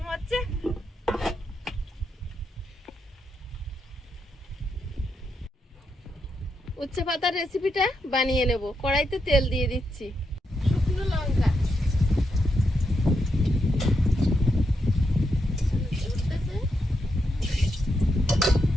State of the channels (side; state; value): both; normal; correlation 0.82